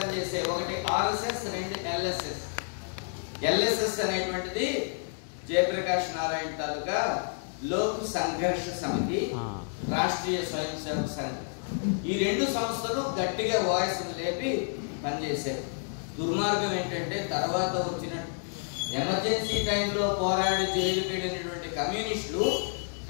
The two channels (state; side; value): silent; right; 58 dB below the other